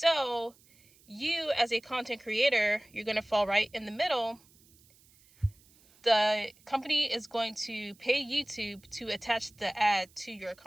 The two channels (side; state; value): right; noise; hiss, 29 dB below the sound